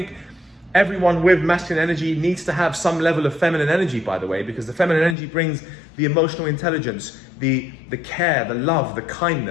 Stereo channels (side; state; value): right; drops out; at 5.2 s